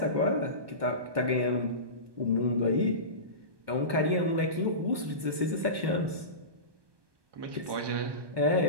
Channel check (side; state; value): left; late; 1.2 ms